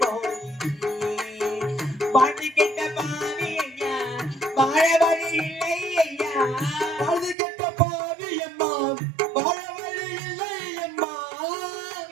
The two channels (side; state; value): left; drops out; at 7.4 s